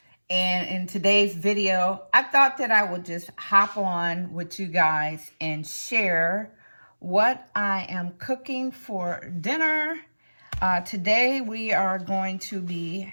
And in today's video, I thought that I would just hop on with you guys and share what I am cooking for dinner. Today we are going to be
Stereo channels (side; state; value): both; inverted; correlation -1.00